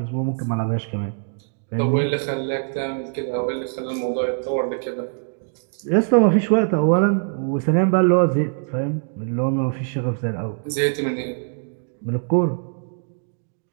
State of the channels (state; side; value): silent; left; 59 dB below the other